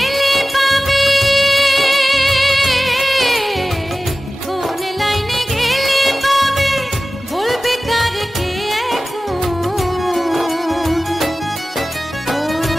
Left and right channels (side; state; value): both; normal; correlation 0.96